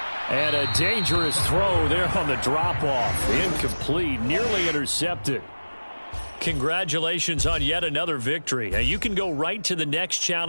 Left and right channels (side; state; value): both; inverted; correlation -1.00